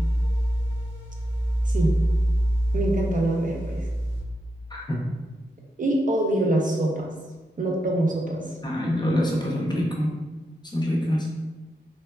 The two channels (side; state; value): both; normal; correlation 0.86